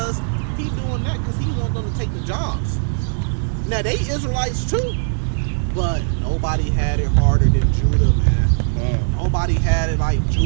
He doing that because he wants them to take the jobs. Now, they Israelites too, but nobody had it harder than Judah, man. Nobody had it like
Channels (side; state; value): left; silent; digital silence